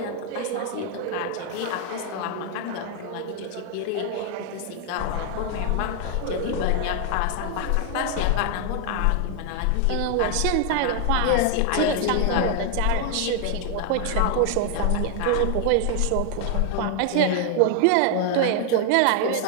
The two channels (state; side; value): different; both; correlation 0.00